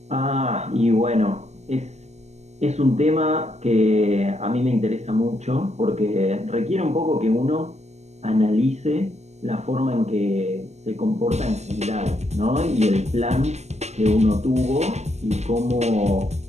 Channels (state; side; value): late; left; 0.33 ms